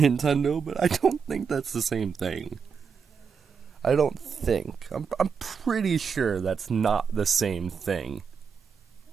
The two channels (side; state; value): left; quieter; 6.2 dB